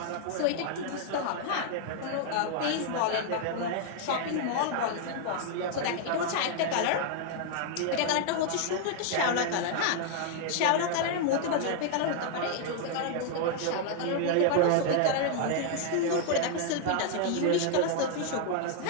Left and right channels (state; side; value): different; both; correlation 0.00